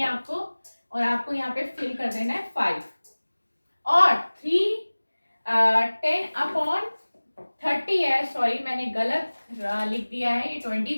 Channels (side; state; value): both; inverted; correlation -1.00